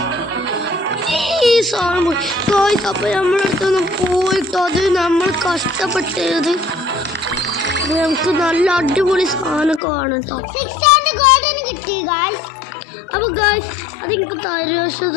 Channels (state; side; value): drops out; right; at 9.8 s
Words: ഈ സാധനം പോയി ഗായ്സ്. അപ്പൊ നമ്മളടുത്തൊന്ന് പോയിട്ടോ അത് നമ്മൾ കഷ്ടപ്പെട്ടത് നമുക്ക് നല്ല അടിപൊളി സാധനം കാണും കേട്ടോ. അപ്പൊ ഗായ്സ് അത് എനിക്ക് തരുമോ